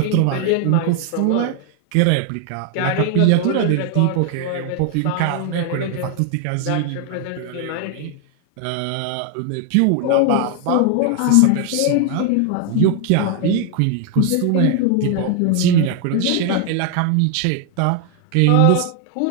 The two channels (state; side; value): different; both; correlation 0.01